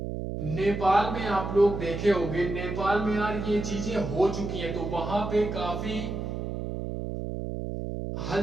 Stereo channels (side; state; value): right; noise; hum, 4 dB below the sound